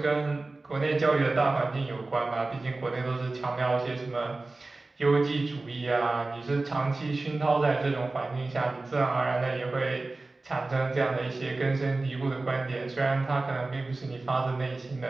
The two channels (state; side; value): quieter; left; 3.3 dB